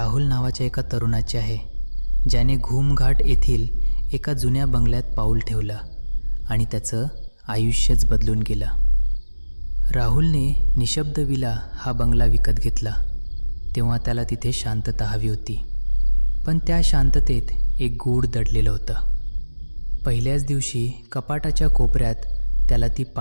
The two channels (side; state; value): both; inverted; correlation -1.00